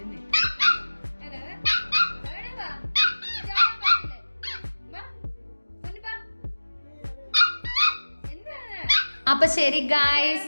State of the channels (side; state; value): both; inverted; correlation -1.00